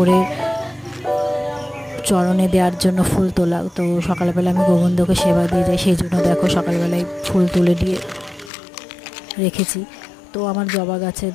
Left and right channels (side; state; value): right; drops out; at 8.5 s